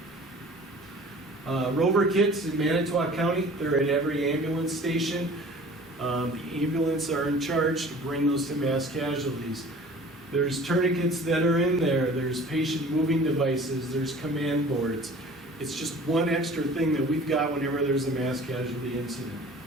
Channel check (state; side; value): normal; both; correlation 0.46